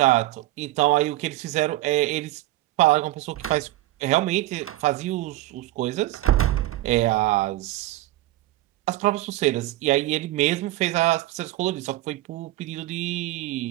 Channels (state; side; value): quieter; left; 16.6 dB